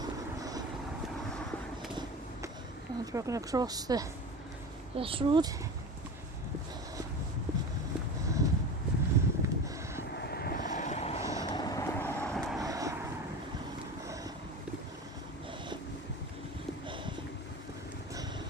And we're going to cross this road.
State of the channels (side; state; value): both; normal; correlation 0.31